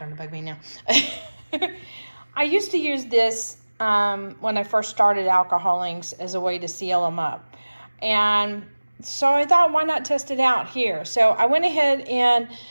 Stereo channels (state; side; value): inverted; both; correlation -1.00